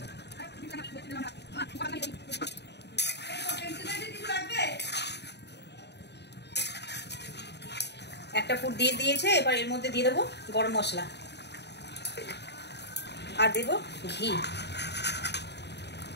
একটা ফুট দিয়ে দিয়েছে। এবার এর মধ্যে দিয়ে দেবো গরম মশলা আর দেবো ঘি,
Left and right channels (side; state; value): right; late; 0.50 ms